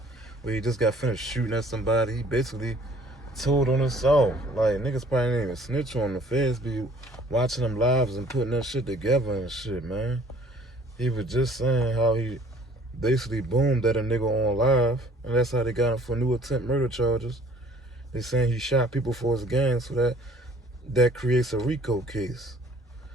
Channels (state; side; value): normal; both; correlation 0.55